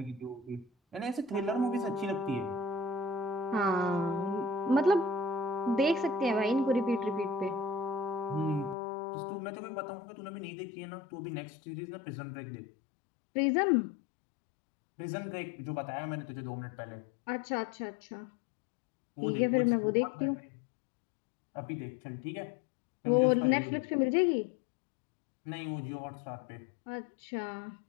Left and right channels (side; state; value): right; drops out; at 8.8 s